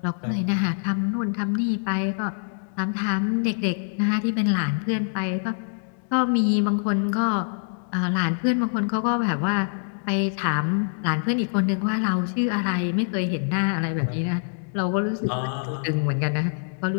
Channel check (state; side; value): silent; right; digital silence